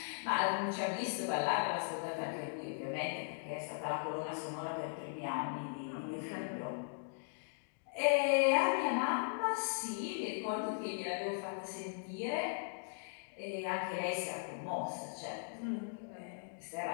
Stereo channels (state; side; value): silent; right; digital silence